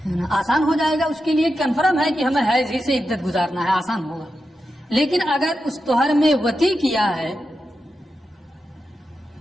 آسان ہو جائے گا اس کے لیے، کنفرم ہے کہ ہمیں حیض ہی سے عدت گزارنا ہے، آسان ہوگا۔ لیکن اگر اس طہر میں وطی کیا ہے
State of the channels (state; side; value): normal; both; correlation 0.89